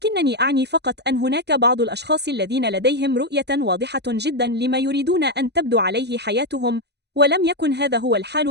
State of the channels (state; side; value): late; left; 0.49 ms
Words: أعني فقط أن هناك بعض الأشخاص الذين لديهم رؤية واضحة جداً لما يريدون أن تبدو عليه حياتهم، ولم يكن هذا هو